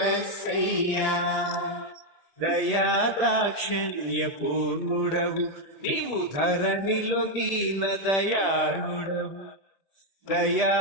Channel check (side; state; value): right; late; 1.8 ms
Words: దయాదాక్షిణ్య పూర్ణుడవు నీవు ధరణిలో దీన దయాళుడవు